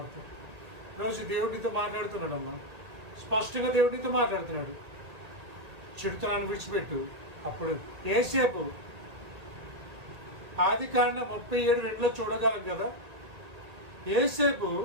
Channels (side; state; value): left; late; 2.0 ms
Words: ఈరోజు దేవుడితో మాట్లాడుతున్నాడమ్మా, స్పష్టంగా దేవుడితో మాట్లాడుతున్నాడు. చెడుతనాన్ని విడిచిపెట్టు. అప్పుడు యేసేపు ఆదికాండం 37:2 చూడగలం కదా. యేసేపు